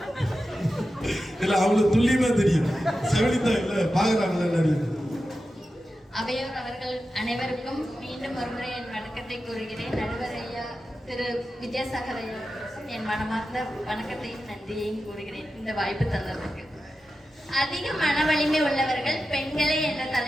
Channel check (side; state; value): both; normal; correlation 0.92